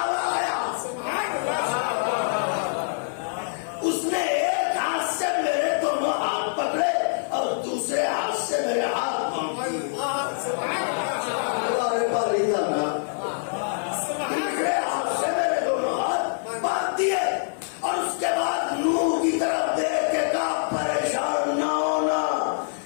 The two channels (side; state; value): right; silent; digital silence